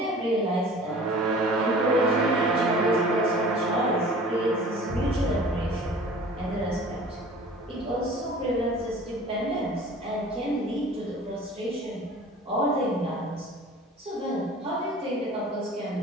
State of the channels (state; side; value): normal; both; correlation 0.44